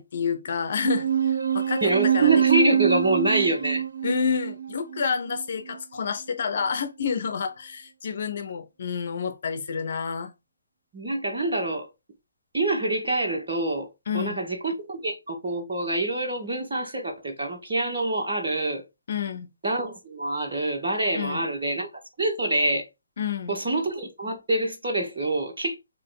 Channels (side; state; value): both; inverted; correlation -0.64